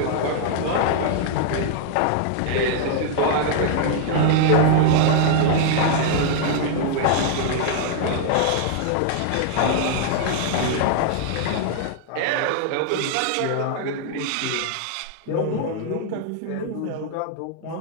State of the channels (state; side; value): different; both; correlation -0.01